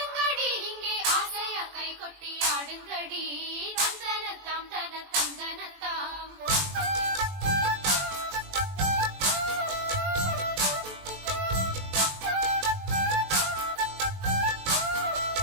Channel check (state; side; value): late; left; 21 ms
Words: இங்கே ஆசையா கை கொட்டி ஆடுங்கடி. தந்தனத்தாம் தன தந்தனத்தாம்.